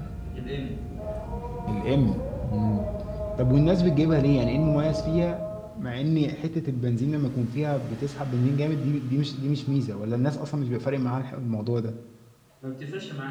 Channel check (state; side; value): identical; both; correlation 1.00